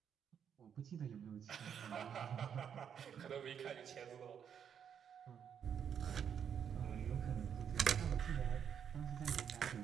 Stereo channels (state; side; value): quieter; left; 8.1 dB